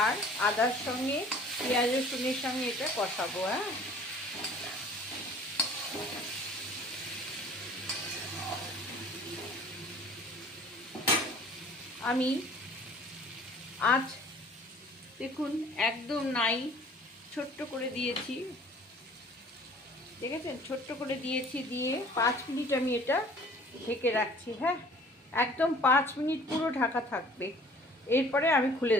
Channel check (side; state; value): both; normal; correlation 0.51